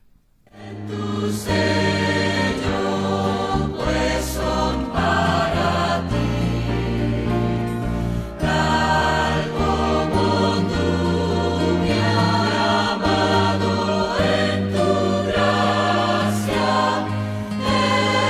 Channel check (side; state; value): both; identical; correlation 1.00